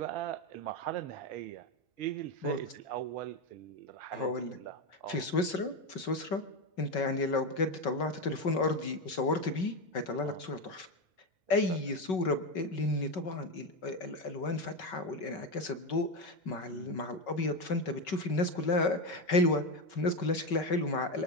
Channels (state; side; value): late; right; 5.3 ms